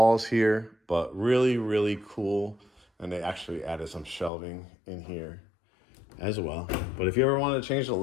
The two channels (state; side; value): drops out; right; at 4.3 s